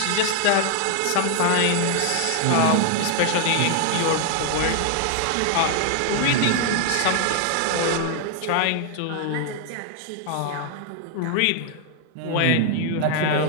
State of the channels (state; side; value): different; both; correlation 0.00